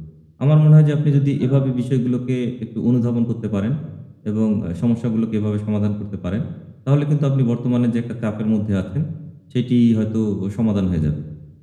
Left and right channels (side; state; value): both; identical; correlation 1.00